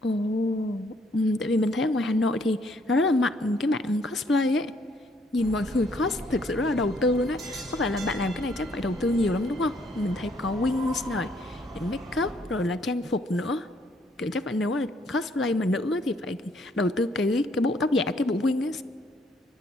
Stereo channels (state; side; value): normal; both; correlation 0.67